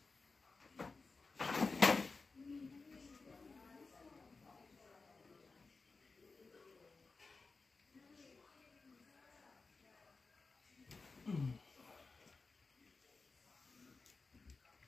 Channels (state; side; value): quieter; right; 4.1 dB